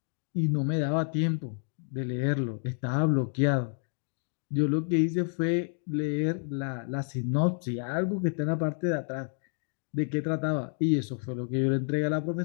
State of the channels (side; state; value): right; silent; 56 dB below the other